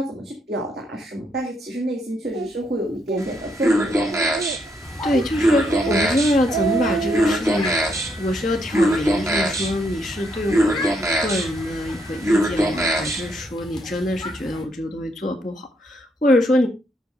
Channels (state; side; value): normal; both; correlation 0.75